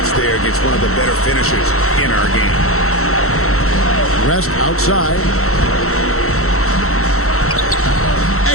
there against one of the better finishers in our game. West outside.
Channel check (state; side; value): late; right; 0.63 ms